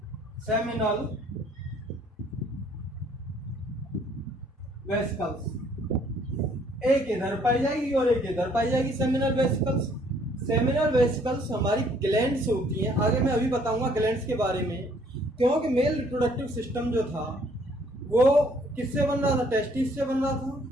सेमिनल वेसिकल्स। एक इधर पाई जाएगी और एक इधर पाई जाएगी, सेमिनल वेसिकल्स। सेमिनल वेसिकल्स हमारी ग्लैंड्स होती हैं, आगे मैं अभी बताऊंगा ग्लैंड्स के बारे में। क्योंकि मेल रिप्रोडक्टिव सिस्टम जो था वो किससे बन रहा था, टेस्टिस से बन रहा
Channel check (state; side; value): normal; both; correlation 0.62